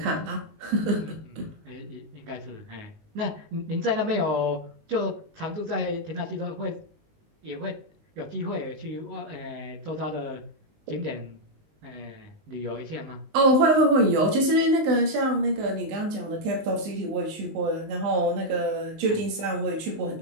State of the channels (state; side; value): late; left; 19 ms